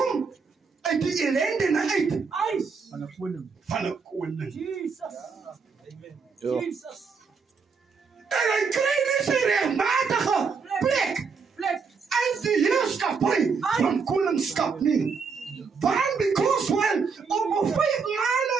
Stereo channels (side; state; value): left; quieter; 5.3 dB